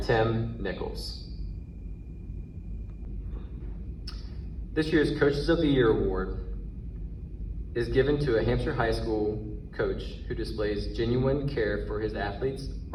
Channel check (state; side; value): identical; both; correlation 1.00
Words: Tim Nichols. This year's Coaches of the Year Award is given to a Hampshire High School coach who displays genuine care for his athletes